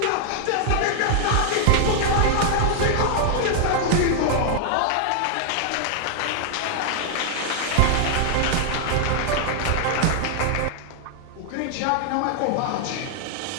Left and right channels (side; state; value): both; different; correlation 0.00